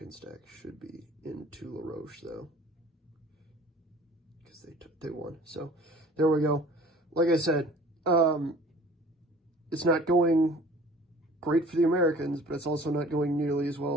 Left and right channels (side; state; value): both; normal; correlation 0.48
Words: stack should be into La Roche, though, because they won. So there we go. Like I said, it's not going great for the Americans, but it's also not going nearly as